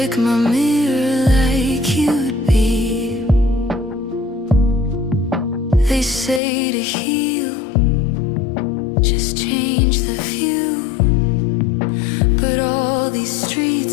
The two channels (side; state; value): right; drops out; at 6.4 s